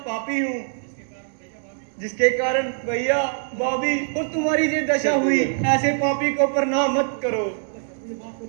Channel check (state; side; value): silent; left; digital silence